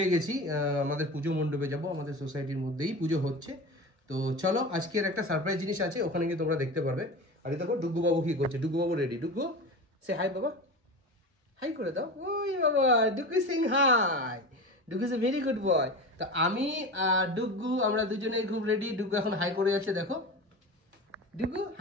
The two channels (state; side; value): late; left; 1.3 ms